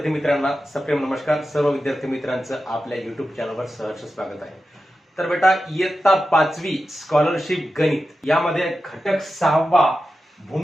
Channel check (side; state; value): both; normal; correlation 0.92